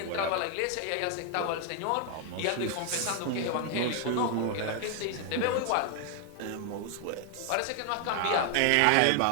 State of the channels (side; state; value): both; different; correlation 0.00